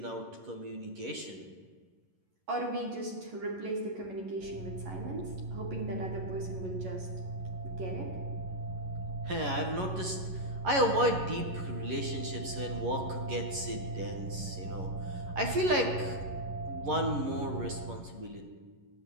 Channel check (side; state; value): left; late; 11 ms